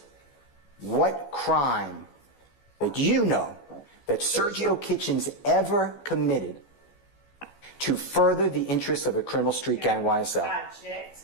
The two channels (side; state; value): right; late; 14 ms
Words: what crime that you know that Sergio Kitchens ever committed to further the interests of a criminal street gang YSL. I object,